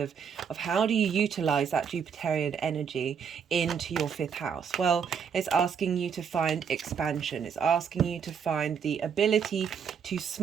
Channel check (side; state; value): left; quieter; 7.0 dB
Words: how do you utilize that Jupiterian energy into your 5th house. Well, it's asking you to find expansion. It's asking you to find the ability to